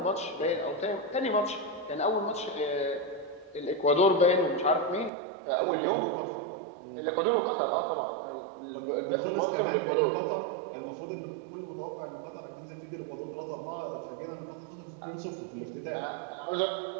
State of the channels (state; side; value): drops out; left; at 5.1 s